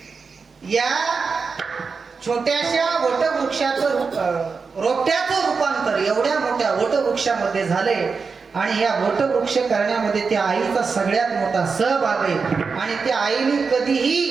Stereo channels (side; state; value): left; quieter; 5.0 dB